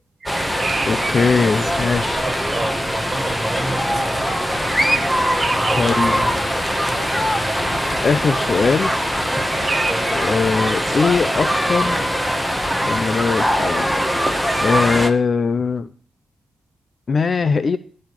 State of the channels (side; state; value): both; normal; correlation 0.92